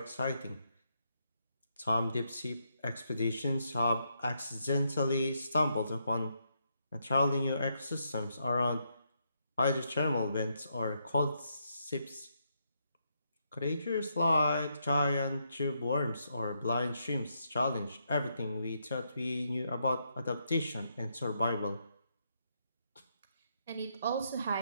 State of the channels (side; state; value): both; inverted; correlation -0.78